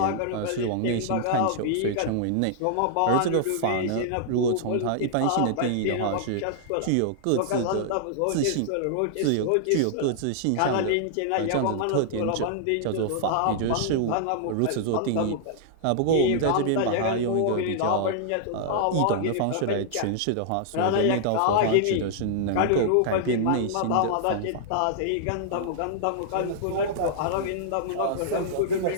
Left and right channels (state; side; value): different; both; correlation -0.01